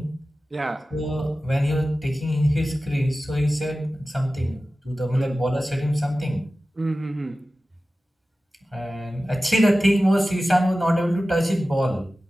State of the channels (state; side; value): normal; both; correlation 0.95